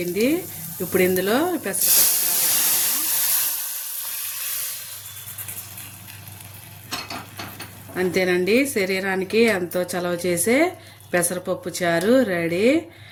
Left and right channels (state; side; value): identical; both; correlation 1.00